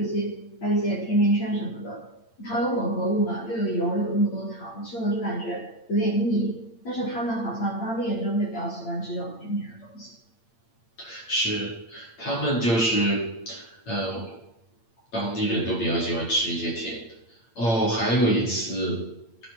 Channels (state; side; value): late; right; 8.7 ms